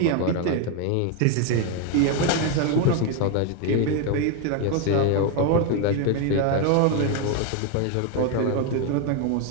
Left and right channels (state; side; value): different; both; correlation 0.01